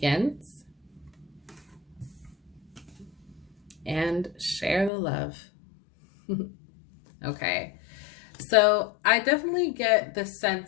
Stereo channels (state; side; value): drops out; right; at 4.9 s